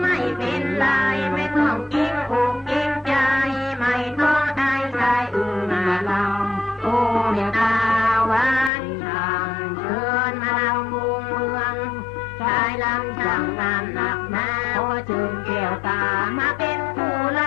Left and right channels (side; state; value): right; drops out; at 8.7 s